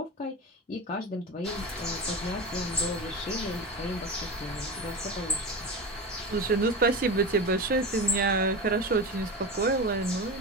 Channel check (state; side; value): normal; both; correlation 0.24